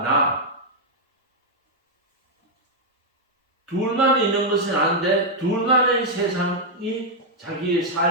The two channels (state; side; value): normal; both; correlation -0.03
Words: 나 둘만 있는 것은 아닌데 둘만의 세상이 자기의